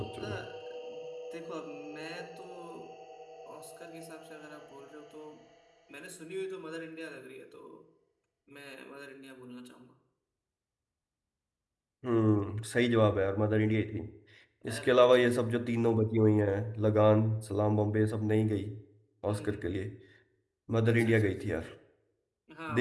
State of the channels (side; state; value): both; identical; correlation 1.00